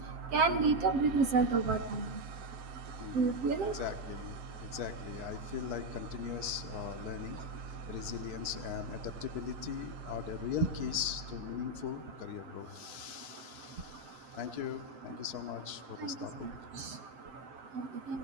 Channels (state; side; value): late; left; 7.7 ms